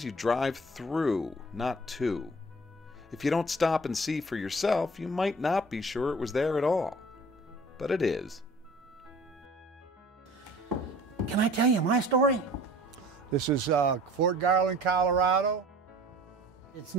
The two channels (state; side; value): normal; both; correlation 0.47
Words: you drive through, not to. If you don't stop and see for yourself, you might not be sure it was there at all. But it is. Can I tell you my story? This is Fort Garland, Colorado. It's